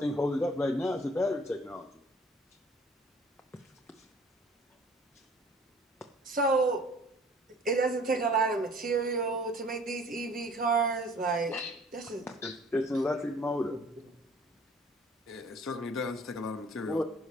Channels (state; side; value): normal; both; correlation 0.52